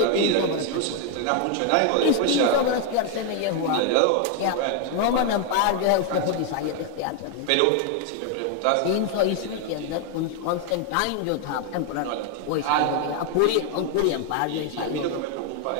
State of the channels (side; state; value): both; different; correlation 0.01